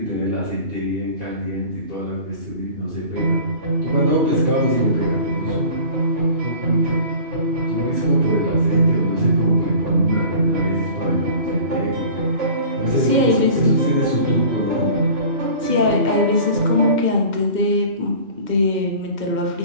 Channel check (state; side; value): late; left; 2.1 ms